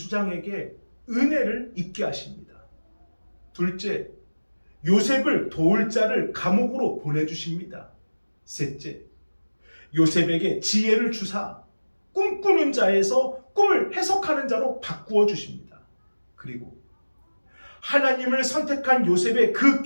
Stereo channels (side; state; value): both; inverted; correlation -1.00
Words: 은혜를 입게 하십니다. 둘째, 요셉을 도울 자를 감옥으로 보내주십니다. 셋째, 요셉에게 지혜를 주사 꿈꾸는 자에서 꿈을 해석하는 자로 바꾸어 주십니다. 그리고 하나님을 선택한 요셉의 그